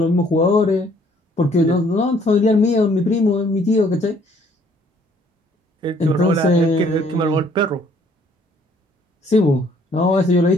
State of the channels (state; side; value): normal; both; correlation 0.62